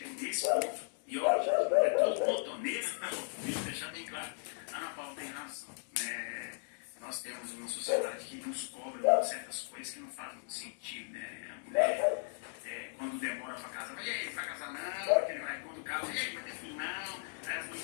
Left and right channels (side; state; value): right; silent; digital silence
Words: é nesse ponto, e olha, é todo ponto, nesse ponto, deixa eu deixar bem claro, a Ana Paula tem razão, né? Nós temos uma sociedade que nos cobra certas coisas que não fazem muito sentido, né? A mulher, quando demora para casar, e aí, vai casar não, quando casa, e aí, vai ter filho não, aí as